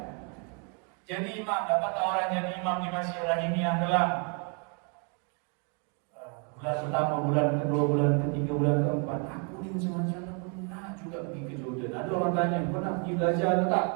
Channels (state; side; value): quieter; left; 37.5 dB